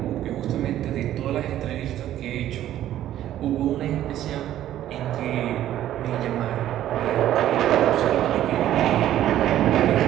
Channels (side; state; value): left; quieter; 12.4 dB